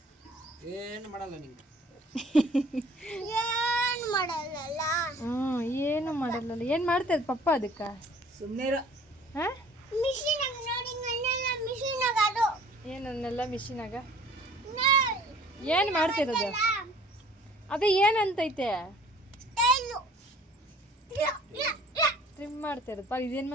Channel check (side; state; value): both; normal; correlation 0.51